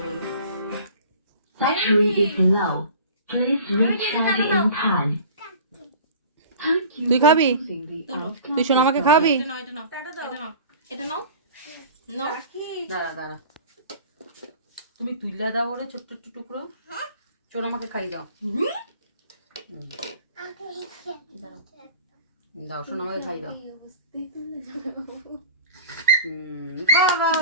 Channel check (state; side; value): inverted; both; correlation -0.42